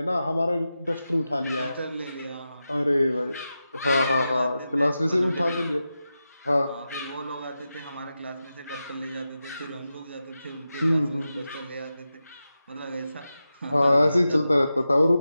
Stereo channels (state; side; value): inverted; both; correlation -0.91